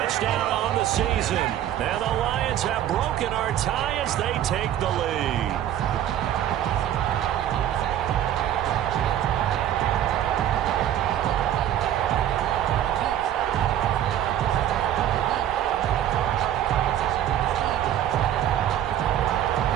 on the season. And the Lions have broken our tie as they take the lead.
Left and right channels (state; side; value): quieter; left; 11.3 dB